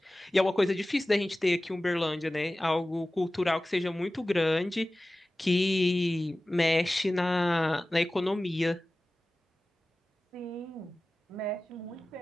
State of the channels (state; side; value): normal; both; correlation 0.97